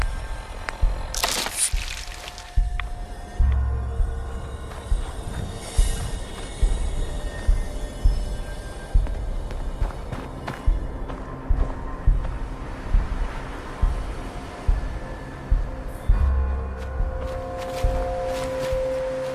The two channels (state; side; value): identical; both; correlation 1.00